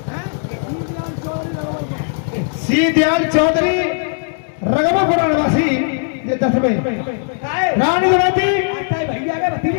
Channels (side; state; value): right; silent; digital silence